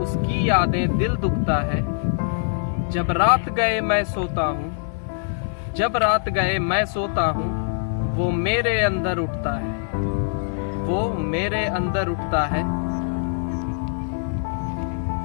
यादें दिल दुखता है। जब रात गए मैं सोता हूँ, जब रात गए मैं सोता हूँ, वो मेरे अंदर उठता है, वो मेरे अंदर उठता है।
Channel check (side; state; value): right; silent; digital silence